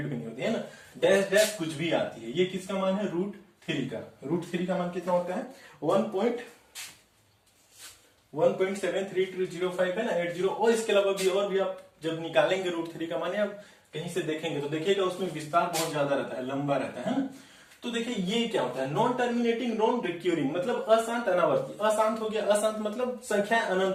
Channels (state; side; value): identical; both; correlation 1.00